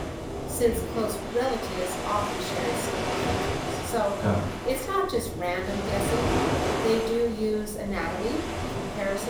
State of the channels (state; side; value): identical; both; correlation 1.00